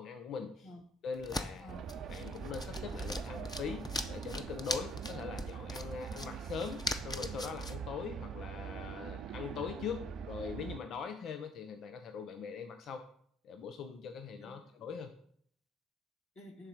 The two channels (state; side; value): normal; both; correlation 0.62